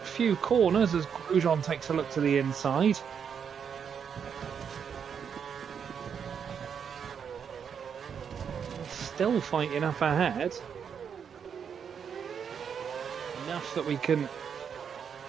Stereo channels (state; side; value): quieter; left; 7.3 dB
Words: few corners as Grosjean takes a look to the inside. Still fighting up ahead. Enough that we can